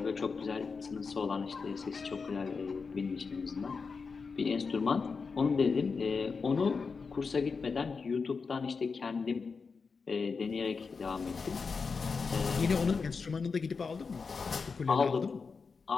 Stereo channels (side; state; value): right; quieter; 5.0 dB